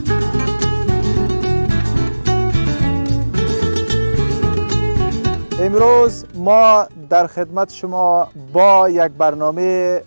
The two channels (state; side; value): inverted; both; correlation -1.00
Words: امروز ما در خدمت شما با یک برنامه